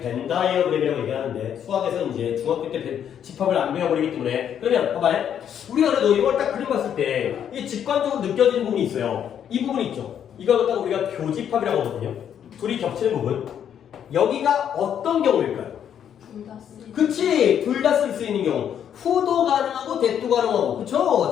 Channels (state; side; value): quieter; right; 9.1 dB